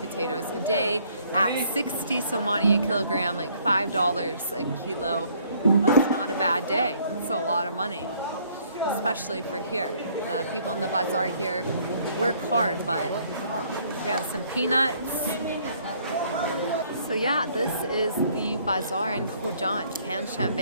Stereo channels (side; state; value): both; inverted; correlation -0.63